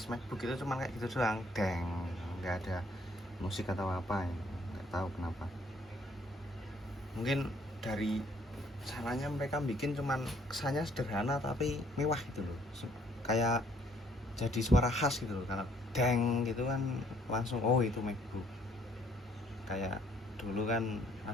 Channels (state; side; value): normal; both; correlation 0.63